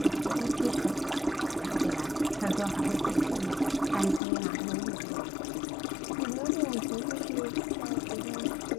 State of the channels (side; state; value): right; drops out; at 4.2 s